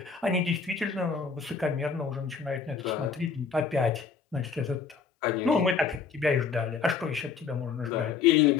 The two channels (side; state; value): right; quieter; 5.6 dB